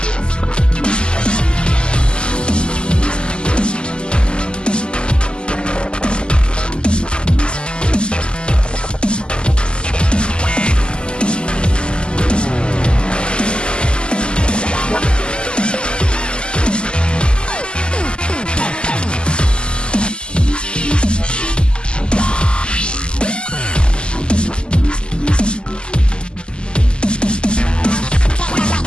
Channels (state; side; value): late; right; 0.050 ms